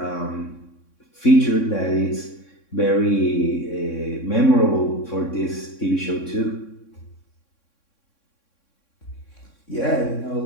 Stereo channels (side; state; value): right; late; 3.6 ms